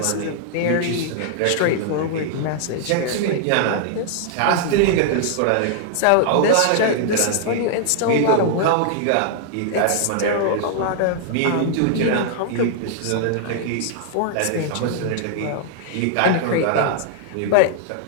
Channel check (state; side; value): different; both; correlation -0.01